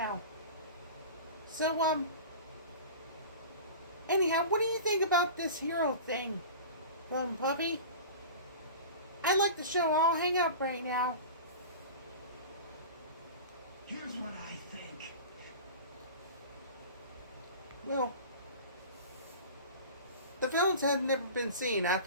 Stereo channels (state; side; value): inverted; both; correlation -0.35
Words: So, anyhow, what do you think about this hero thing, Puppy? I like the show. I'll hang up right now. Here's what I think. Well, the villains had never been seen